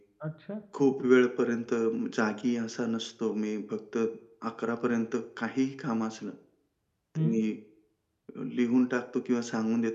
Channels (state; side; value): identical; both; correlation 1.00